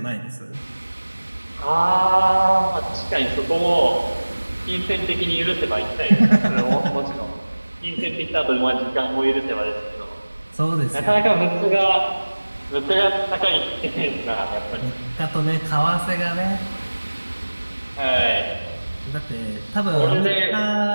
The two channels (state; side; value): inverted; both; correlation -1.00